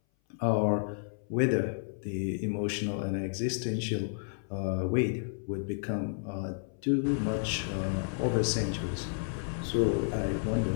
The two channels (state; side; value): silent; right; 57 dB below the other